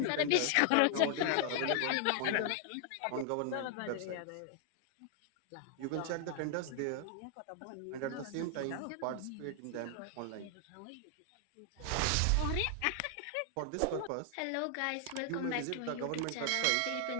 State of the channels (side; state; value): both; different; correlation 0.00